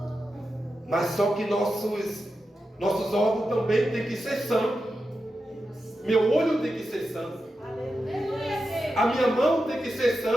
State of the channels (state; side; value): normal; both; correlation 0.90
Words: Mas só que nossos órgãos também têm que ser santos. Meu olho tem que ser santo. A minha mão tem que ser